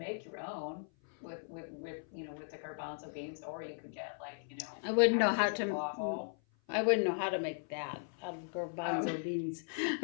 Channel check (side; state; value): right; silent; 53 dB below the other